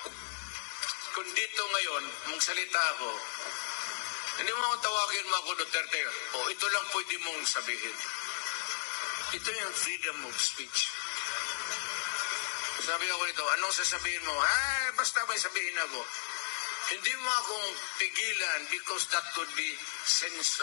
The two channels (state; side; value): silent; right; digital silence